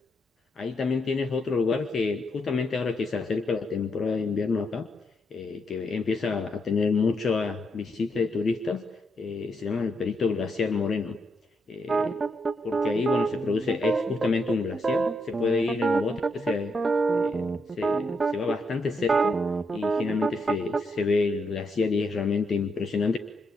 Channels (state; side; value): normal; both; correlation 0.79